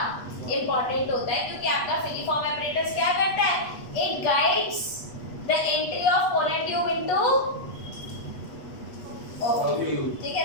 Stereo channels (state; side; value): late; right; 8.2 ms